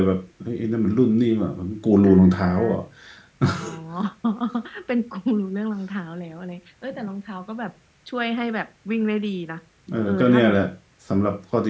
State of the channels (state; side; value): identical; both; correlation 1.00